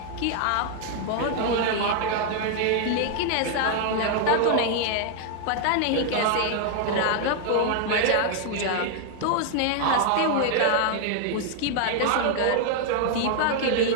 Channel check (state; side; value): different; both; correlation 0.00